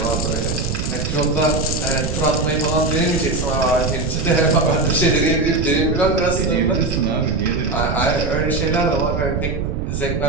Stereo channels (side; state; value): right; noise; rumble, 2 dB below the sound